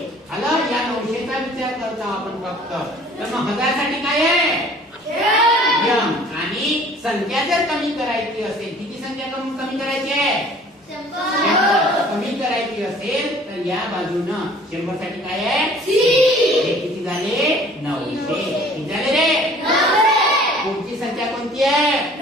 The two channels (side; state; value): both; normal; correlation 0.51